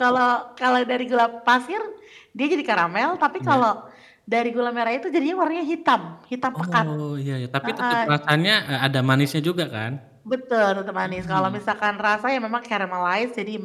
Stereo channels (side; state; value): both; identical; correlation 1.00